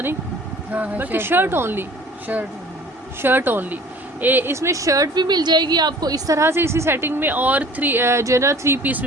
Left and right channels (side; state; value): both; normal; correlation 0.48